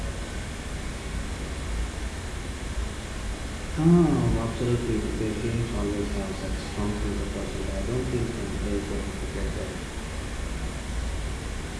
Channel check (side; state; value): both; identical; correlation 1.00